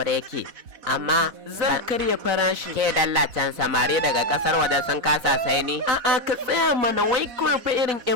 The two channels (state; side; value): late; left; 4.0 ms